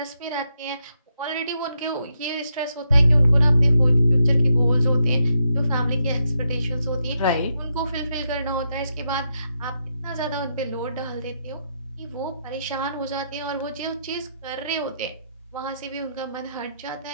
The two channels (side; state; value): both; inverted; correlation -0.82